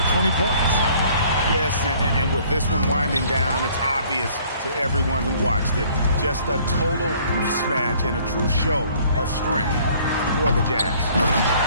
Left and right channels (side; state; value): both; inverted; correlation -0.57